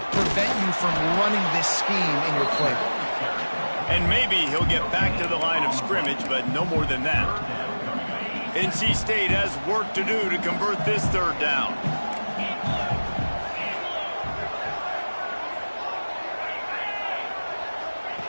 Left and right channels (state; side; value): inverted; both; correlation -1.00